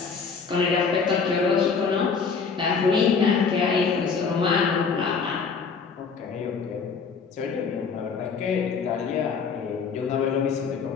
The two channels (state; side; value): quieter; right; 5.4 dB